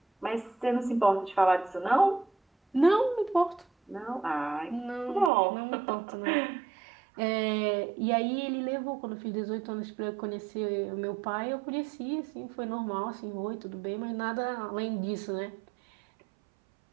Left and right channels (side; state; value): left; drops out; at 5.3 s